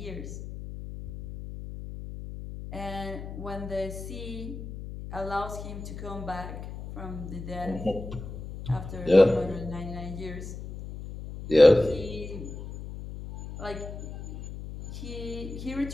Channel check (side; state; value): left; noise; hum, 10 dB below the sound